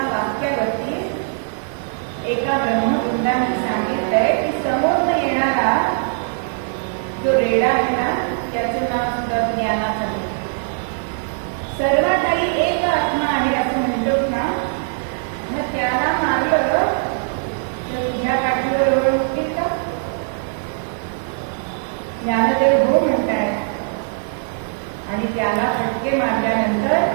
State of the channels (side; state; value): left; silent; digital silence